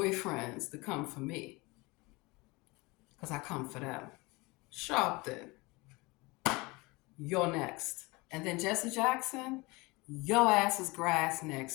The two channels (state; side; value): quieter; right; 24.3 dB